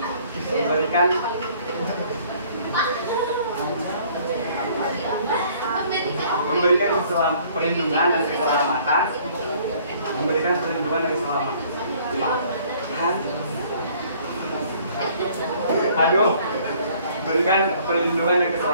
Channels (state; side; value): inverted; both; correlation -0.57